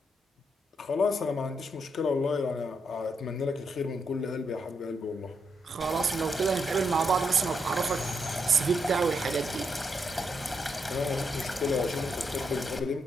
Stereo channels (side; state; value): both; normal; correlation 0.80